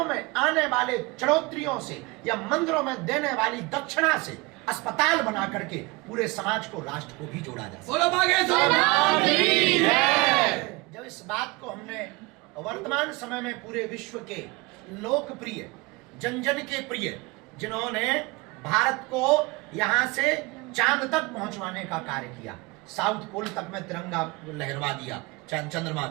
में आने वाले चढ़ोत्रियों से या मंदिरों में देने वाली दक्षिणा से अस्पताल बना करके पूरे समाज को, राष्ट्र को भी जोड़ा जा बोलो बागेश्वर धाम की जय। जब इस बात को हमने वर्तमान समय में पूरे विश्व के लोकप्रिय, जन जन के प्रिय, जिन्होंने भारत को यहाँ से चांद तक पहुंचवाने का कार्य किया, साउथ पोल तक में तिरंगा लहरवा दिया चंद्रमा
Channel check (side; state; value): left; quieter; 24.6 dB